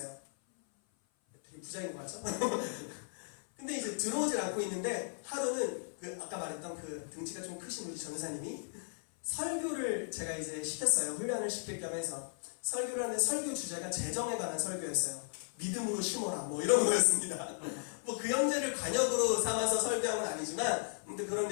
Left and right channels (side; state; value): right; silent; 54 dB below the other